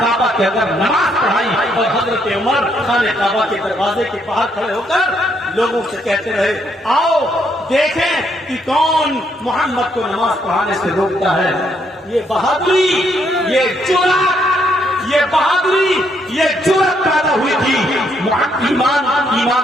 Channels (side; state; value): both; normal; correlation 0.73